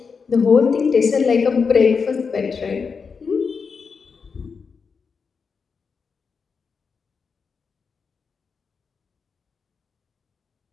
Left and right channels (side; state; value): right; quieter; 5.4 dB